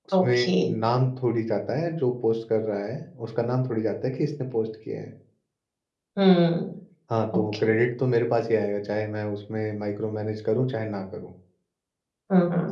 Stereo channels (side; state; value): both; identical; correlation 1.00